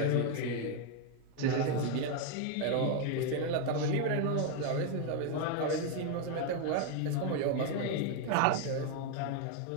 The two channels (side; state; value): both; different; correlation 0.01